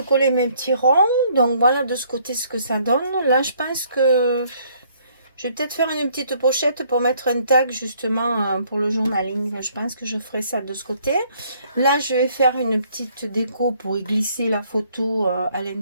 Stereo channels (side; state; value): both; inverted; correlation -0.64